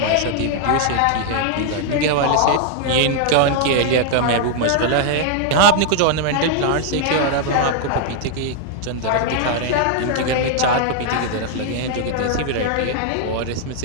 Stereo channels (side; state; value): both; different; correlation 0.00